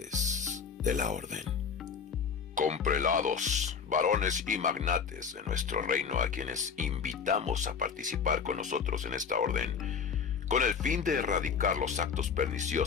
de la Orden. Con prelados, varones y magnates de nuestro reino a quienes invitamos a participar con nosotros en esta orden, con el fin de erradicar los actos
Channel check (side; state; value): right; quieter; 6.4 dB